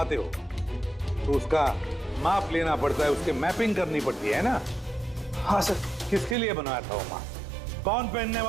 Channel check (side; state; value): left; drops out; at 6.4 s